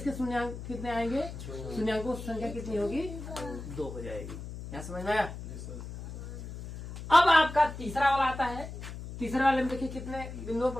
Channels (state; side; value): noise; left; hum, 10 dB below the sound